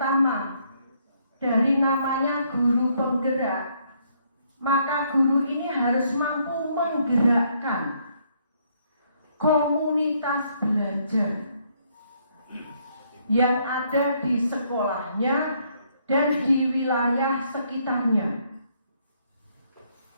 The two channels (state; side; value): inverted; both; correlation -0.70